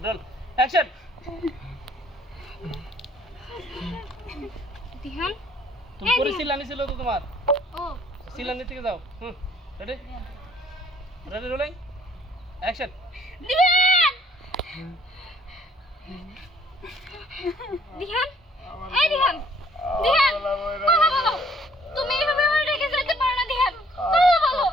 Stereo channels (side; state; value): both; normal; correlation 0.61